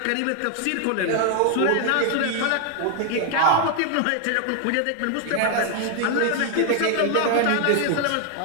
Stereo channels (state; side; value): different; both; correlation 0.00